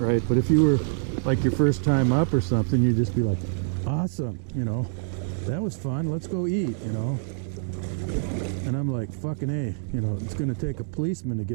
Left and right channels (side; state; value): left; silent; digital silence